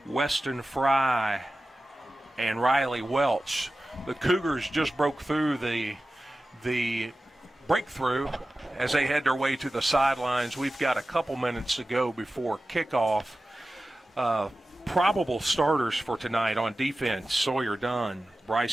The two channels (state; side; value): normal; both; correlation 0.95